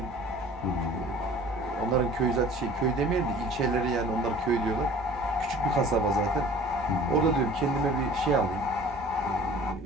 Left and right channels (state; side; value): normal; both; correlation 0.46